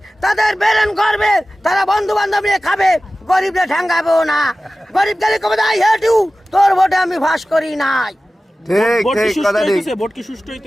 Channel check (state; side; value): normal; both; correlation 0.96